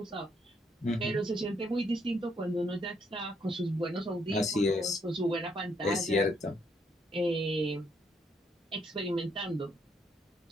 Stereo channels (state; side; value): normal; both; correlation 0.73